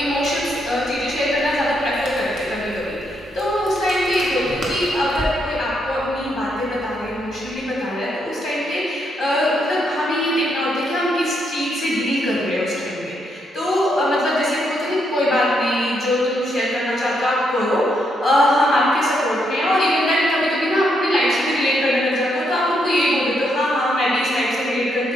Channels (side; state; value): both; normal; correlation 0.77